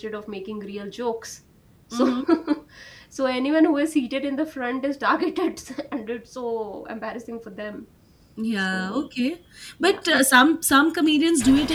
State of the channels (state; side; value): identical; both; correlation 1.00